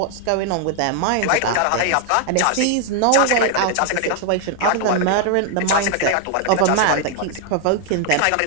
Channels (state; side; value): different; both; correlation 0.00